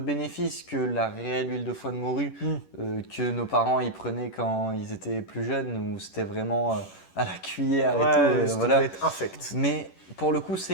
que la réelle huile de foie de morue que nos parents y prenaient quand ils étaient plus jeunes, où c'était vraiment à la cuillère et tout. Ça Voilà. doit être infect. Mais pour le coup,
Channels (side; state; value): right; late; 11 ms